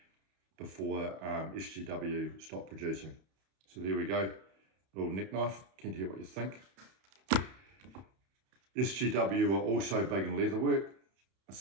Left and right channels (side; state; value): left; late; 31 ms